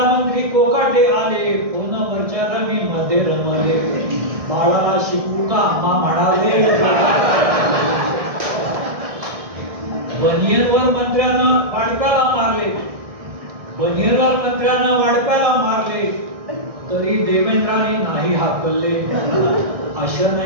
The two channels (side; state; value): left; late; 1.6 ms